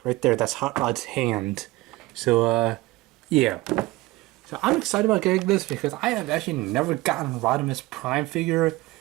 that's Hot Rod's hand. So yeah. So I'm excited about getting this because I have actually never gotten a Rodimus Prime figure.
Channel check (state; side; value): quieter; left; 19.8 dB